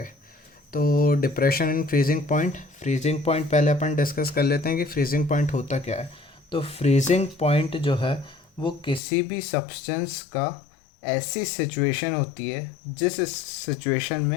तो डिप्रेशन एंड फ्रीजिंग पॉइंट पहले अपन डिस्कस कर लेते हैं कि फ्रीजिंग पॉइंट होता क्या है। तो फ्रीजिंग पॉइंट जो है वो किसी भी सब्सटेंस का ऐसी सिचुएशन होती है जिस सिचुएशन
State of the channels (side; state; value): right; drops out; at 9.0 s